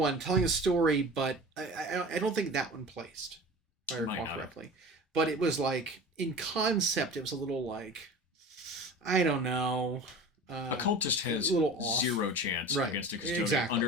telling a story, but I don't think that one placed, if I recall correctly. But it was in concept, it was a little I don't know. A cultist has zero chance against a custodian.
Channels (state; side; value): normal; both; correlation 0.36